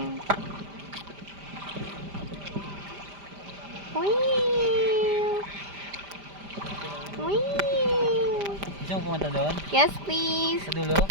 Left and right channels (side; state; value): left; late; 5.0 ms